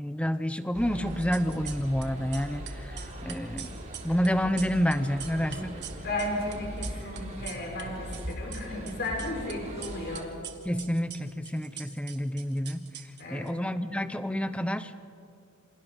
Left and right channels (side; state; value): both; normal; correlation 0.82